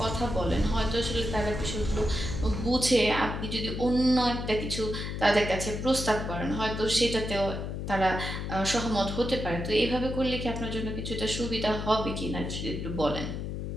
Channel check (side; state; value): left; noise; hum, 4 dB below the sound